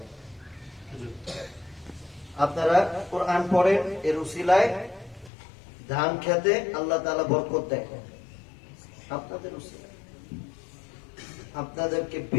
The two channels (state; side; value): drops out; right; at 5.3 s